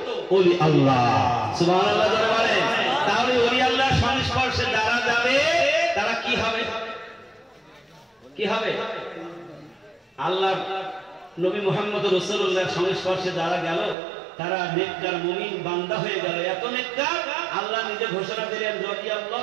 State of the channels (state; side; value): drops out; left; at 14.0 s